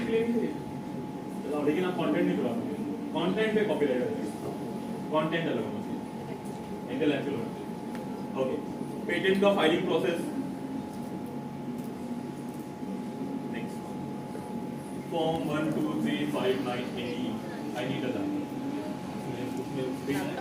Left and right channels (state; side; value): identical; both; correlation 1.00